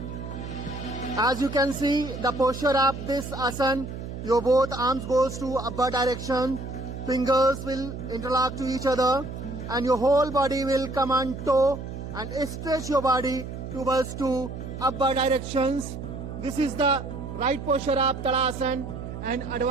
As you can see the posture of this asana, your both arms goes to upward direction, fingers will interlock to each other and your whole body will come on toe and stretch your body towards to upward directions. This is the right posture of Tadasana, and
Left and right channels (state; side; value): noise; right; hum, 8 dB below the sound